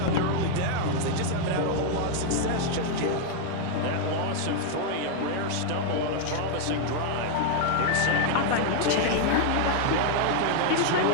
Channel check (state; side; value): different; both; correlation 0.00